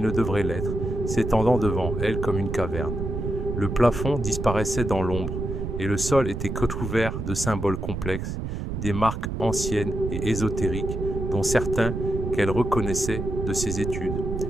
ne devrait l'être, s'étendant devant elle comme une caverne. Le plafond disparaissait dans l'ombre, et le sol était recouvert de symboles complexes, des marques anciennes et ésotériques, dont certains qu'elle reconnaissait de ses études.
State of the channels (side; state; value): right; noise; rumble, 4 dB below the sound